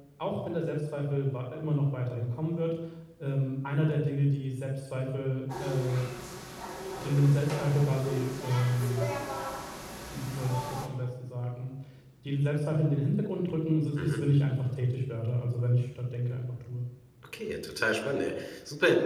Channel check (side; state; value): both; identical; correlation 1.00